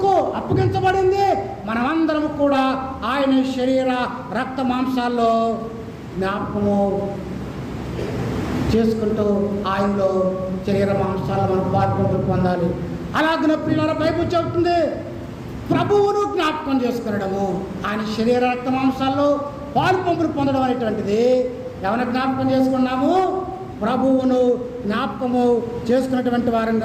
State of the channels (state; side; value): identical; both; correlation 1.00